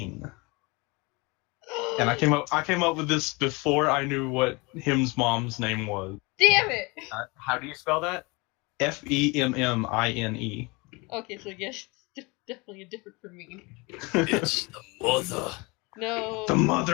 And I came up with this before I knew what him's mom's name was. Damn it! How do you spell that? Femmine. Okay, so yes, it's definitely a different from me. It's the mother. No. The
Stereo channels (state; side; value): quieter; right; 26.4 dB